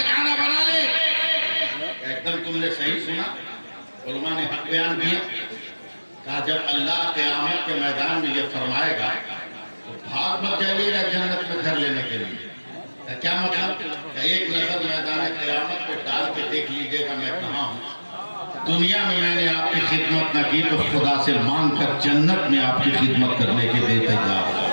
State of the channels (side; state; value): both; inverted; correlation -1.00